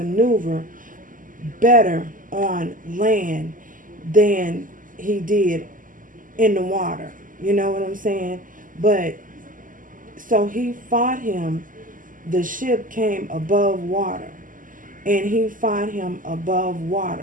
better on land than he did in the water. You know what I'm saying? But so he fought him. The ship came above water, and he fought him above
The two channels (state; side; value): late; left; 0.39 ms